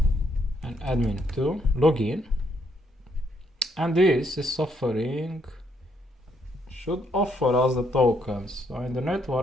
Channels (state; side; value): normal; both; correlation 0.72